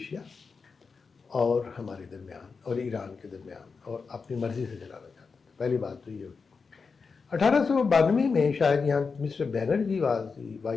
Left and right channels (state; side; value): quieter; right; 5.0 dB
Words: اور ہمارے درمیان اور ایران کے درمیان, اور اپنی مرضی سے چلانا چاہتا تھا. پہلی بات تو یہ ہوئی. 1892 میں شاید یہاں mister Banerjee was the